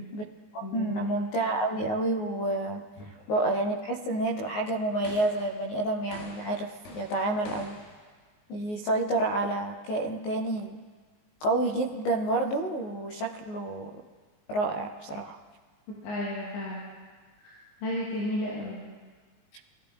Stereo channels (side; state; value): right; late; 19 ms